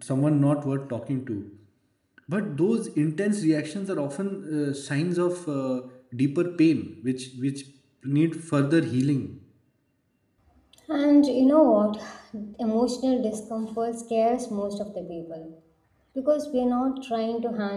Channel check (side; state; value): both; identical; correlation 1.00